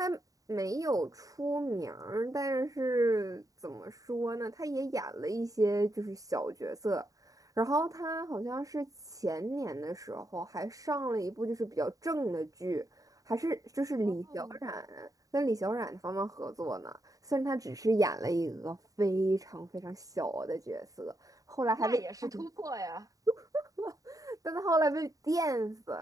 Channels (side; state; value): left; late; 0.17 ms